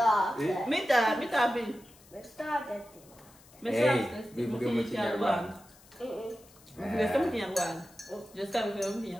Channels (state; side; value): noise; left; hiss, 25 dB below the sound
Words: Mitä Abi? Me saatettiin. Me Ei, saastettiin. vi borde mycket hjälpa. Vi ska mycket hjälpa. Det ska vi mycket